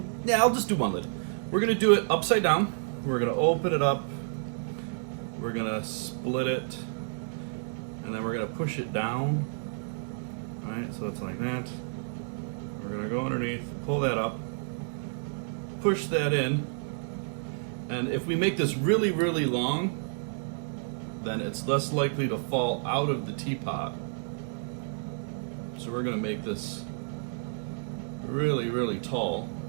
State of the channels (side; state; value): left; silent; 58 dB below the other